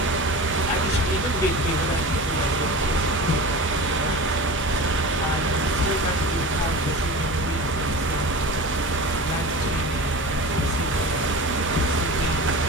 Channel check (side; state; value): both; normal; correlation 0.32